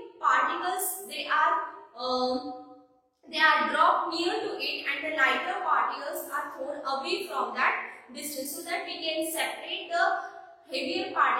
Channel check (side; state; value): both; identical; correlation 1.00